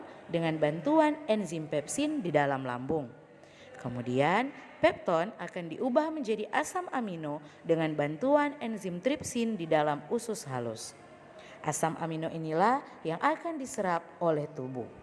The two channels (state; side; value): identical; both; correlation 1.00